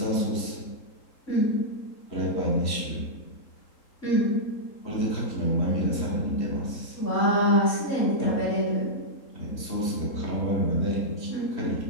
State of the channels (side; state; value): right; late; 3.8 ms